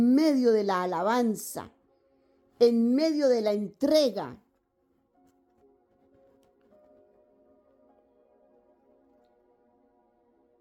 medio de la alabanza, en medio de la entrega.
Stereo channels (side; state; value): both; identical; correlation 1.00